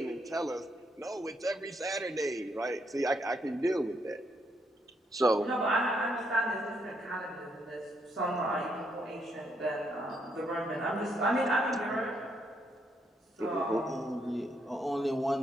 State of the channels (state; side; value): normal; both; correlation 0.75